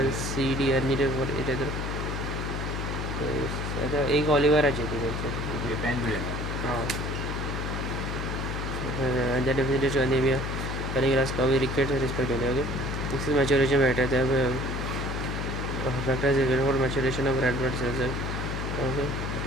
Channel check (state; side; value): noise; left; hum, 3 dB below the sound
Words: C, D are needed for erythropoiesis. अच्छा एक Oliver आहे the definition of anemia cardiovascular scurvy rickets respectively. Okay, this is maturation factor. Factors is for maturation of red blood cells. Okay,